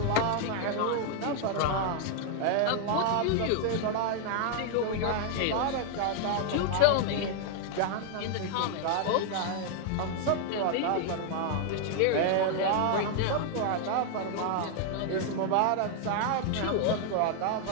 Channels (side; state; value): both; different; correlation 0.00